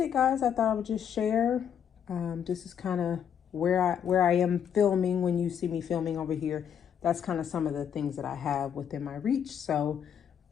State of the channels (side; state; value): right; quieter; 8.4 dB